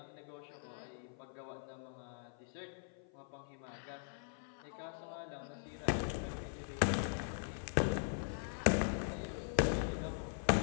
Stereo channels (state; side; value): silent; right; 50 dB below the other